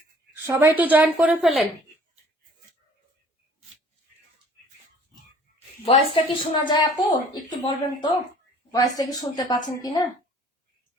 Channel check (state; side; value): normal; both; correlation 0.53